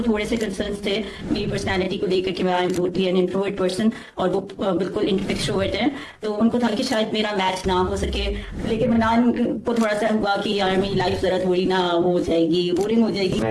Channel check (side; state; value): both; identical; correlation 1.00